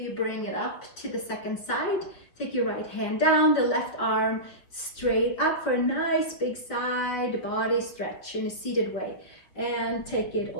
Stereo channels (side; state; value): right; late; 5.6 ms